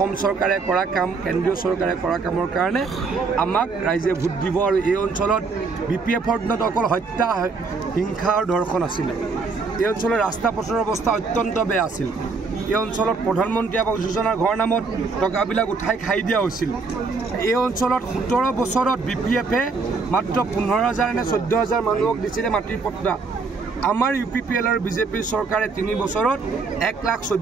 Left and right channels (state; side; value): quieter; left; 4.4 dB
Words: চৰকাৰে কৰা কাম কেন্দ্ৰীয় চৰকাৰে কৰা কামৰ কাৰণে আমাক ৰাইজে ভোট দিব আৰু এই অঞ্চলত BPFৰ দিনত অকল হত্যা হিংসা আৰু ধৰ্ষণ আছিলে এই অঞ্চলৰ ৰাস্তা পথৰ অৱস্থা অত্যন্ত বেয়া আছিল এই অঞ্চলত প্ৰধানমন্ত্ৰী আৱাস যোজনাৰ ঘৰ নামত টকাবিলাক উঠাই খাই দিয়া হৈছিল এই অঞ্চলত 17 বছৰত BPFে মাত্ৰ 15,000 নে 14,000 মানুহক দিছিলে মাটিৰ পট্টা আমাৰ UPPL আৰু বিজেপিৰ চৰকাৰে 3 বছৰত